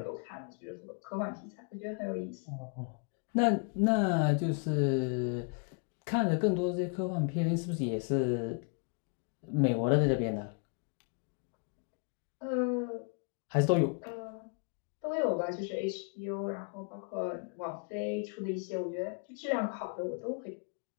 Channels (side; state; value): right; quieter; 39.8 dB